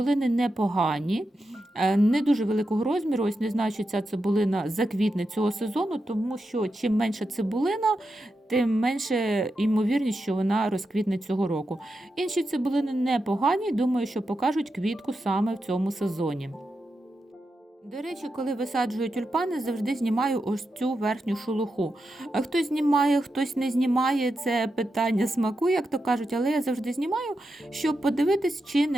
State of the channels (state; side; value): normal; both; correlation 0.88